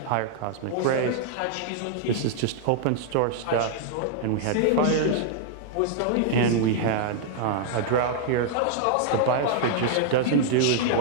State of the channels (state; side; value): different; both; correlation -0.01